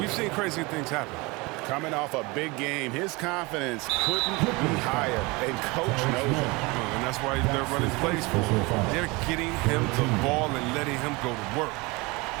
we've seen crazy things happen. Coming off a big game, his confidence couldn't be higher, and coach knows it. And that's why they're running plays for him. They're getting him the ball and letting him go to work.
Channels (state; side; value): quieter; left; 25.1 dB